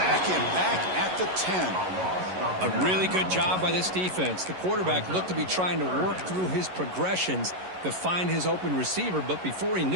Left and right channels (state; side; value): late; left; 11 ms